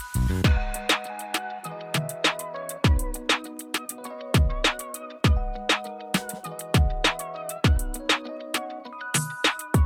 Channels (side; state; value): both; identical; correlation 1.00